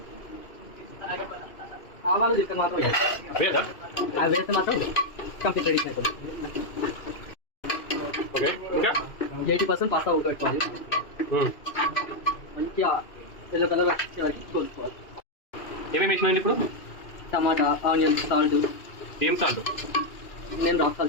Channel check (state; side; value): late; right; 2.6 ms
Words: ఆవాలు చెప్తే మాత్రం వేదా? అవి వేస్తే మాత్రం కంప్లీట్ రెడీ అయిపోతుంది. ఓకే, ఇంకా 80% పాస్తా ఉడకబెట్టుకోవాలి. మంచిగా ఎల్లో కలర్ వచ్చే వరకు కోసుకోవాలి. ఏమేమి వేసినాయండి ఇప్పుడు? టమాటా, ఆనియన్, సాల్ట్. ఏం సాల్ట్? నేను రాక్